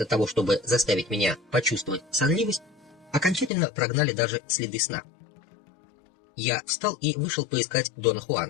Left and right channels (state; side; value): drops out; right; at 3.5 s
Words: того, чтобы заставить меня почувствовать сонливость, окончательно прогнали даже следы сна. Я встал и вышел поискать Дона